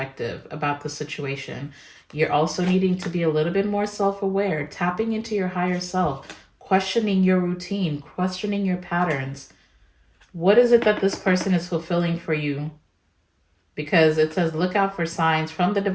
about the situation. You're also needing to be a little bit more self-aware, tapping into your higher self, questioning your routine, questioning your patterns. What is it that this person is fulfilling for you? Because it says look out for signs from the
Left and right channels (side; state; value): both; identical; correlation 1.00